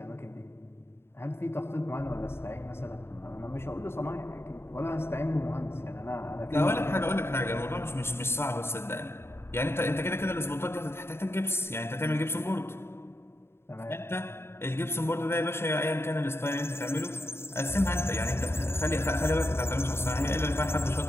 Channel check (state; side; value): late; right; 0.12 ms